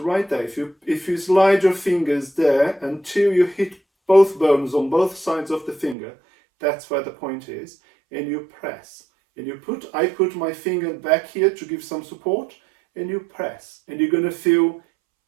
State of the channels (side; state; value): left; drops out; at 6.0 s